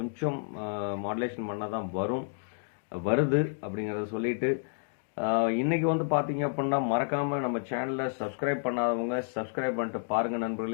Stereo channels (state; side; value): silent; right; digital silence